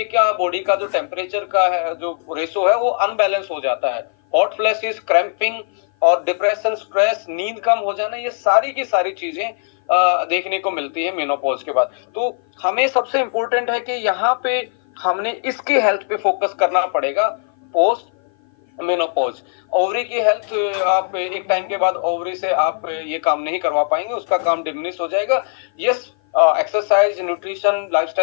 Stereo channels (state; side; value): silent; right; 55 dB below the other